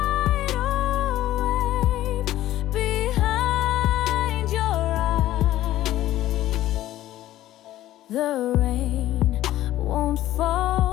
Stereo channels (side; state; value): right; quieter; 14.2 dB